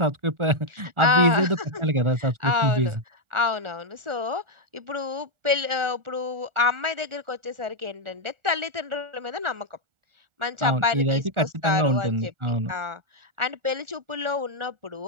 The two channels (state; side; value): late; left; 1.4 ms